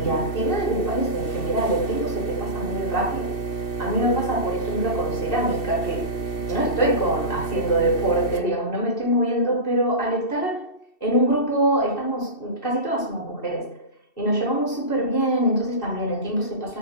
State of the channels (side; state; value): right; late; 2.7 ms